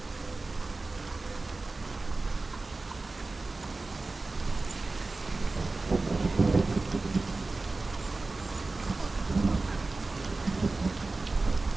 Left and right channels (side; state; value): left; quieter; 3.4 dB